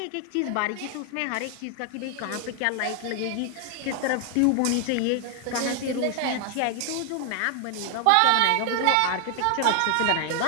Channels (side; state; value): both; different; correlation 0.00